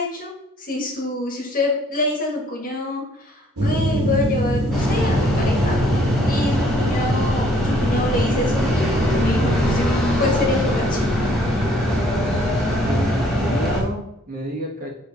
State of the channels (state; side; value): normal; both; correlation 0.62